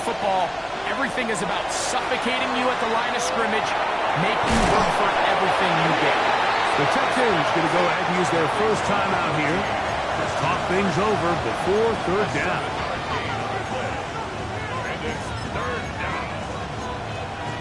football. Everything is about suffocating you at the line of scrimmage, making you work for everything you get. The Texans going to go ahead and use their first time out here to talk things over before 3rd down.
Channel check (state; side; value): identical; both; correlation 1.00